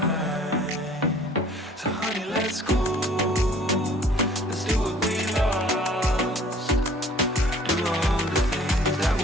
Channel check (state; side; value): normal; both; correlation 0.53